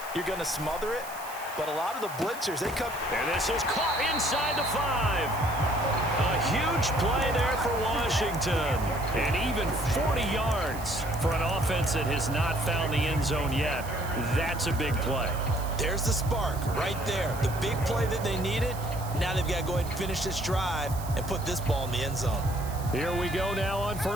you're going to smother it. But a lot of the blitzers, they come. And this is caught inside the 5. A huge play there for Washington. And even 40 yards for an offense that has not found the end zone yet. That's a big play. There's the spark right there. The big play that they needed. Now they've got to go ahead and finish this drive and put this ball in the end zone. Here we go now on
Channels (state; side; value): noise; right; hiss, 15 dB below the sound